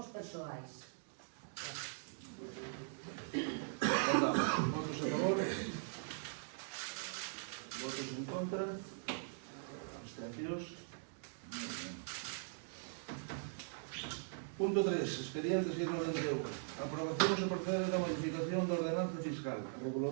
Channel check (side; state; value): left; silent; digital silence